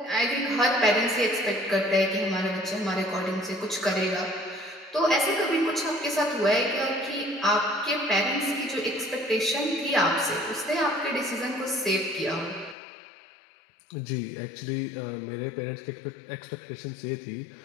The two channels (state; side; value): drops out; right; at 12.8 s